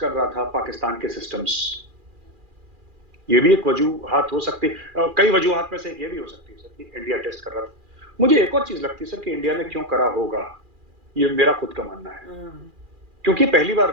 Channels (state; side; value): late; left; 2.4 ms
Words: कर रहा था पाकिस्तान के सिस्टम्स। ये भी एक वजूहात हो सकती है, कई वजूहात में से एक ये भी हो सकती है सर कि इंडिया टेस्ट कर रहा था। मुझे एक और चीज लगती है सर कि इंडिया ने क्यों करा होगा, ये मेरा खुद का मानना है, क्योंकि पहली